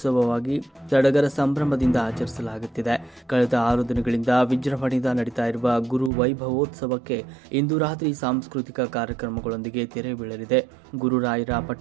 ಸಡಗರ ಸಂಭ್ರಮದಿಂದ ಆಚರಿಸಲಾಗುತ್ತಿದೆ. ಕಳೆದ 6 ದಿನಗಳಿಂದ ವಿಜೃಂಭಣೆಯಿಂದ ನಡೀತಾ ಇರುವ ಗುರು ವೈಭವೋತ್ಸವಕ್ಕೆ ಇಂದು ರಾತ್ರಿ ಸಾಂಸ್ಕೃತಿಕ ಕಾರ್ಯಕ್ರಮಗಳೊಂದಿಗೆ ತೆರೆ ಬೀಳಲಿದೆ. ಗುರುರಾಯರ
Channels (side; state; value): left; drops out; at 6.1 s